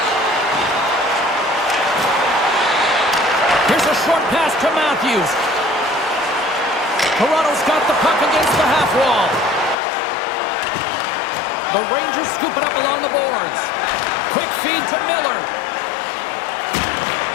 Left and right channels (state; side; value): drops out; right; at 9.8 s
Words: Here's a short pass to Matthews. Toronto's got the puck against the half wall. The Rangers scoop it up along the boards. Quick feed to Miller.